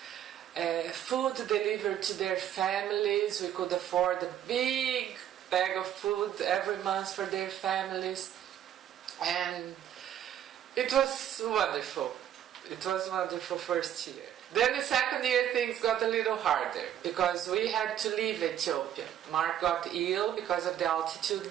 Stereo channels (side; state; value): left; quieter; 10.6 dB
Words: food delivered to their families. We could afford a big bag of food every month for their families. And it was wonderful. It was wonderful first year. Then the second year things got a little harder because we had to leave Ethiopia. Mark got ill because of the altitude